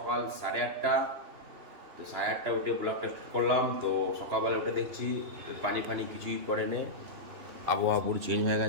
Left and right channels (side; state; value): left; late; 3.0 ms